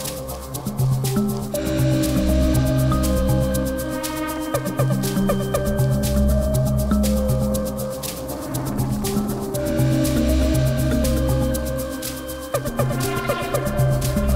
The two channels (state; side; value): identical; both; correlation 1.00